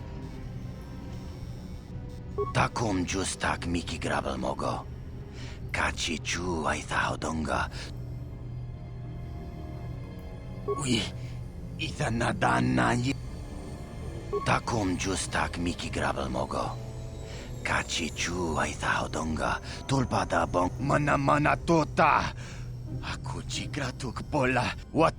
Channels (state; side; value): identical; both; correlation 1.00